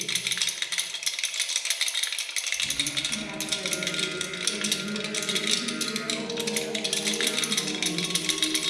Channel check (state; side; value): identical; both; correlation 1.00